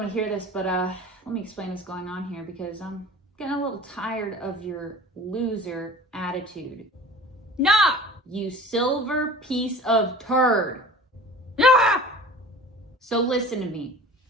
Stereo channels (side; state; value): both; normal; correlation 0.42